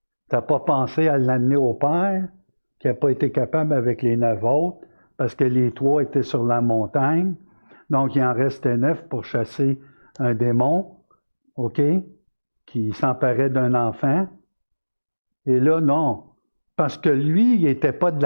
Tu n'as pas pensé à l'amener au Père, qui n'a pas été capable avec les 9 autres, parce que les 3 étaient sur la montagne. Donc, il en restait 9 pour chasser un démon, OK, qui s'emparait d'un enfant. Et là, non. Parce que lui, il n'était pas de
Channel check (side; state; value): both; inverted; correlation -1.00